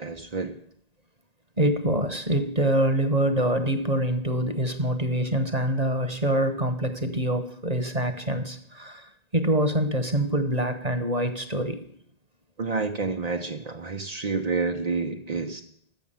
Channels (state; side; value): late; left; 1.9 ms